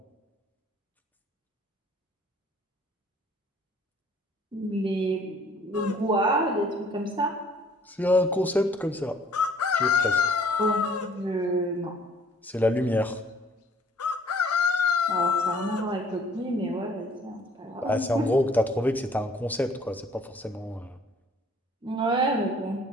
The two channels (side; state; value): both; normal; correlation 0.57